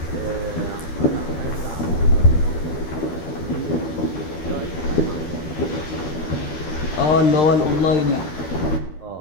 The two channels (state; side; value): late; right; 12 ms